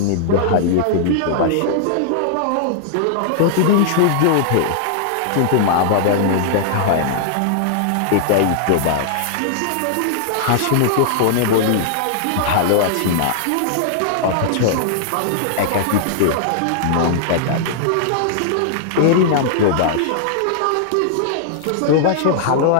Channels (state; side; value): different; both; correlation -0.01